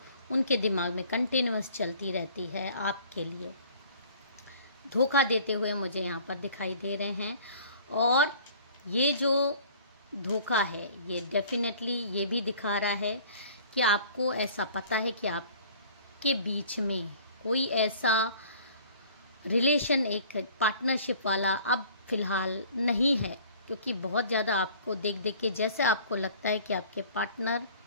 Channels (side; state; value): both; inverted; correlation -0.50